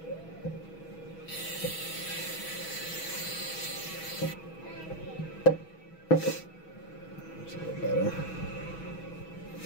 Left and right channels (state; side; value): late; right; 6.2 ms